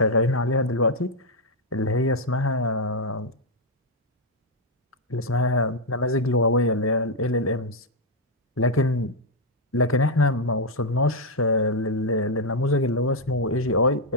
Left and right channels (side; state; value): both; normal; correlation 0.00